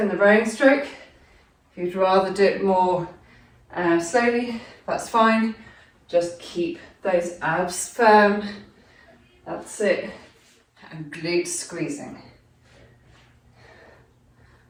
the rowing stroke. If you'd rather do it more slowly, that's fine. Just keep those abs firm. That's it. And glute squeezing.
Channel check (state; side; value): identical; both; correlation 1.00